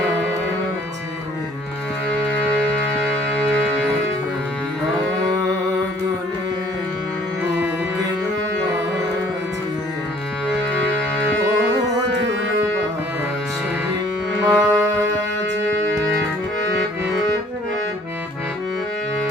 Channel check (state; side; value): normal; both; correlation 0.57